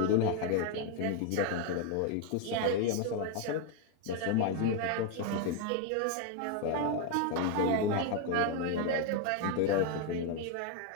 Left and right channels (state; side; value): different; both; correlation 0.01